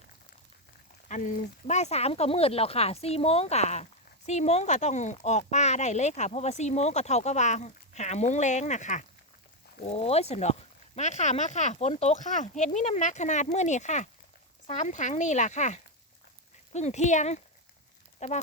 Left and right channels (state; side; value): normal; both; correlation 0.06